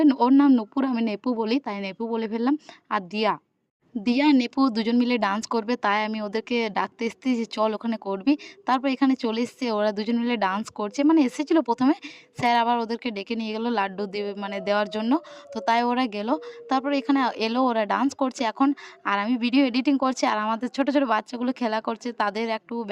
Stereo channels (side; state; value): both; identical; correlation 1.00